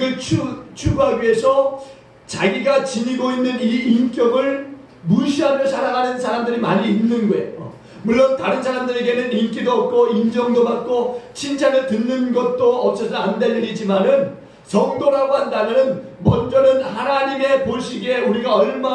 추구하기 위해서 자기가 지니고 있는 이 인격을 무시하며 살아가는 사람들이 많이 있는 거예요. 물론 다른 사람들에게는 인기도 없고 인정도 받고 칭찬을 듣는 것도 없어서 안 될 일이지만은 성도라고 한다면 먼저는 하나님의 보시기에 우리가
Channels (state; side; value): identical; both; correlation 1.00